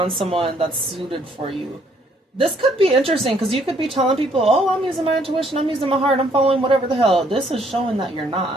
someone that's suited for you. This could be interesting because you could be telling people, oh, I'm using my intuition, I'm using my heart, I'm following whatever the hell. This is showing that you're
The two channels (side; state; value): both; normal; correlation 0.66